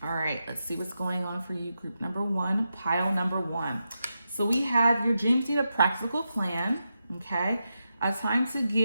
All right, let's see what's going on for you, group number one, pile number one. So we have your dreams need a practical plan, okay? A time to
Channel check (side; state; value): both; inverted; correlation -0.87